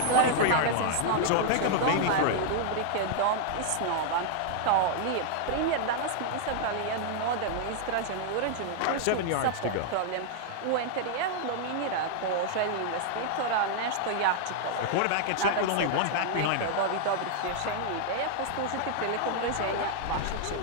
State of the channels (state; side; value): different; both; correlation -0.01